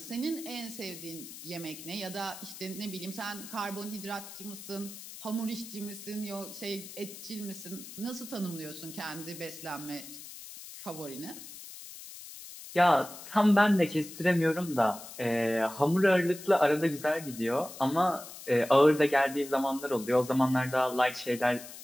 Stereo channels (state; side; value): noise; left; hiss, 14 dB below the sound